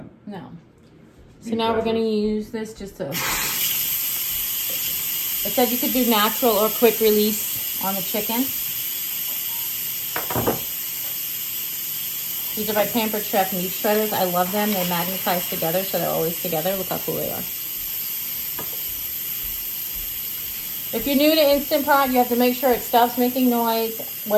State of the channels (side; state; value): both; identical; correlation 1.00